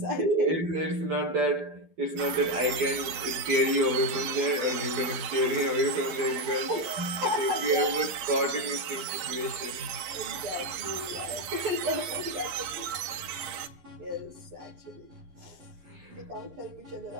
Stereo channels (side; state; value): left; late; 13 ms